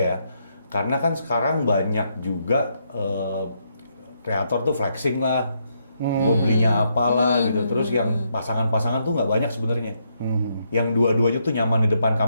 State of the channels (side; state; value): both; inverted; correlation -0.77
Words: Karena kan sekarang banyak juga kreator tuh flexing lah. Gue belinya apalah gitu. Terus yang pasangan-pasangan tuh nggak banyak sebenarnya. Yang dua-duanya tuh nyaman di depan